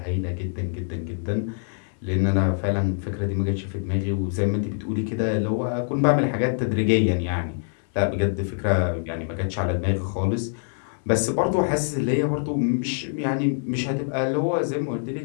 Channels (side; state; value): right; silent; digital silence